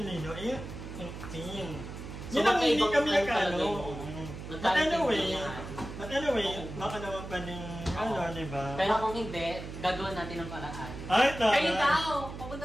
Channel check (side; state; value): right; noise; hum, 10 dB below the sound